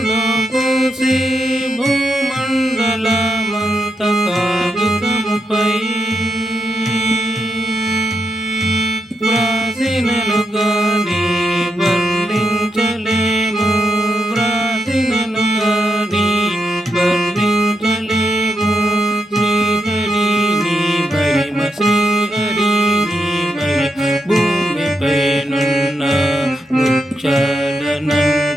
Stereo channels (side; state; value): both; normal; correlation 0.83